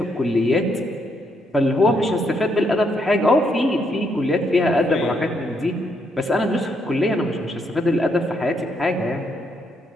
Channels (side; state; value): both; normal; correlation 0.75